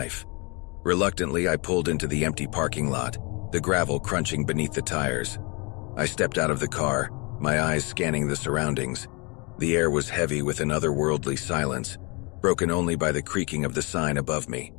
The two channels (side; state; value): right; quieter; 30.1 dB